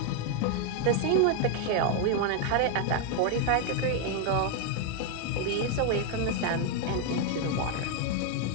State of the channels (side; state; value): both; different; correlation 0.01